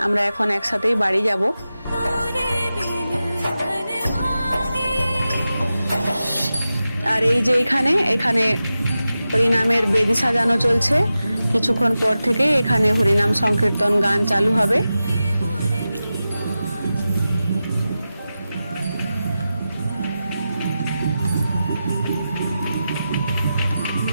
আমরা এখন একসাথেই বাড়ি যাব। আর এই যে এখানে হরিনামের বেদি সাজানো চলছে। কিছুক্ষণ পর থেকে এখানে হরিনাম সংকীর্তন গান চালু হবে।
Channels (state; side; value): inverted; both; correlation -0.92